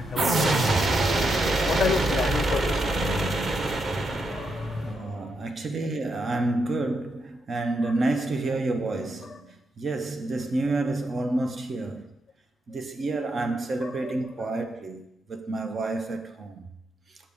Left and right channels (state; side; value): normal; both; correlation 0.82